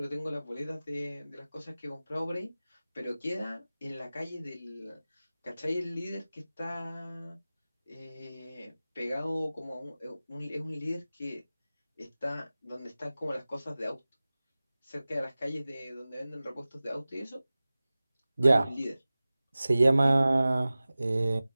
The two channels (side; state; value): both; inverted; correlation -0.97